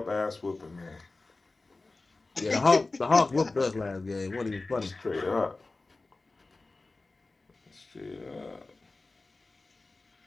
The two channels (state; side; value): quieter; right; 3.4 dB